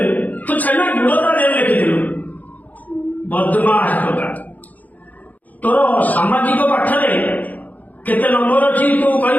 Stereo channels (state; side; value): late; right; 0.079 ms